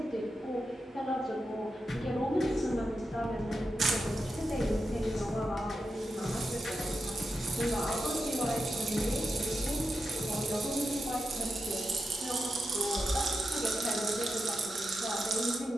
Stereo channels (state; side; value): normal; both; correlation 0.88